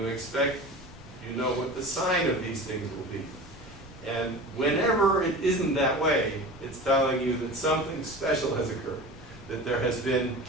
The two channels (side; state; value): left; noise; rumble, 20 dB below the sound